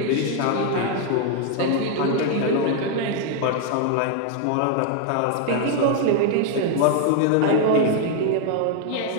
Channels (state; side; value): different; both; correlation 0.00